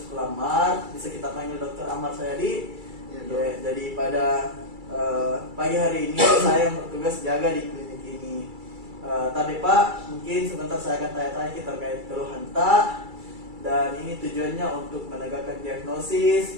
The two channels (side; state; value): left; late; 2.3 ms